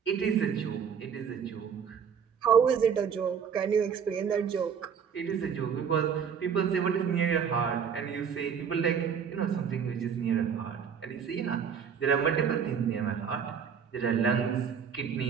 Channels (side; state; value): left; quieter; 7.2 dB